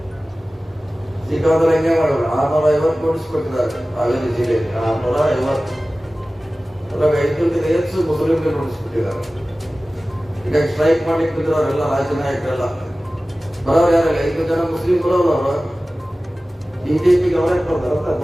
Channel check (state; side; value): normal; both; correlation 0.97